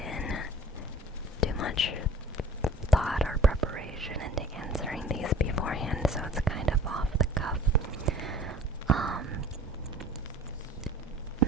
in too much thought or preparation into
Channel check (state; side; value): normal; both; correlation 0.46